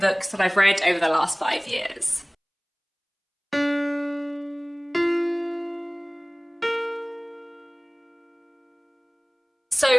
that I've read over the last 5 years.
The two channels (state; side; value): identical; both; correlation 1.00